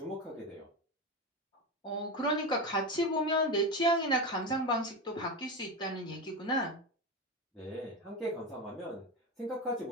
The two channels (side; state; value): both; normal; correlation 0.18